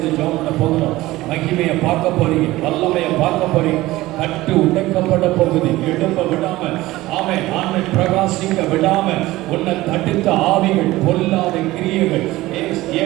ஜெபம் பண்ண போகிறோம். மகிமையை பார்க்க போறீங்க. வல்லமையை பார்க்க போறீங்க. கட்டு உடைக்கப்பட போகுது. எழும்ப விடாம ஆமென் பிரகாசிக்க விடாம உன்னை தடுத்த ஆவிகள், பொல்லாத கிரியைகள்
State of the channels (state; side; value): quieter; left; 17.9 dB